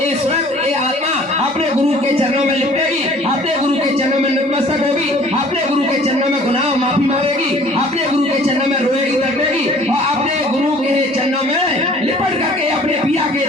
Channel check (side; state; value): both; normal; correlation 0.52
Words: ये स्वयं ये आत्मा अपने गुरु के चरणों में लिपटेगी, अपने गुरु के चरणों में नतमस्तक होगी, अपने गुरु के चरणों में गुनाह माफी मांगेगी, अपने गुरु के चरणों में रोएगी, तड़पेगी, और अपने गुरु के चरणों में लिपट करके अपने पिया के